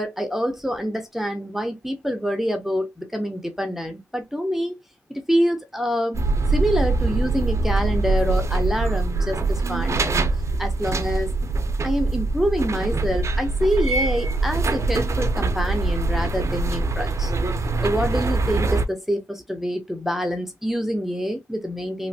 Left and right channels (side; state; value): both; normal; correlation 0.83